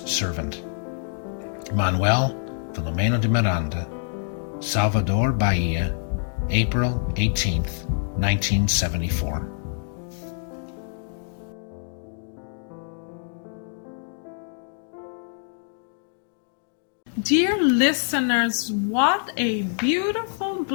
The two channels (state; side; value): silent; right; digital silence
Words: servant. Manuel Filomeno de Miranda, Salvador, Bahia, April 18th, 1974. Dear listeners, what a beautiful